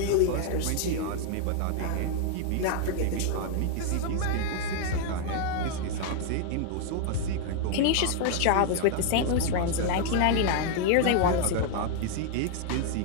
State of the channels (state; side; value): different; both; correlation 0.00